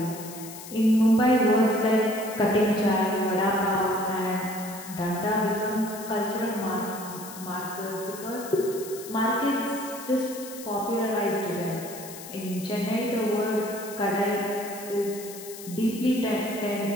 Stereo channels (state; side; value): noise; left; hiss, 14 dB below the sound